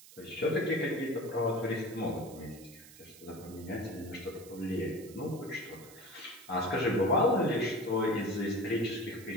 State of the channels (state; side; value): noise; right; hiss, 19 dB below the sound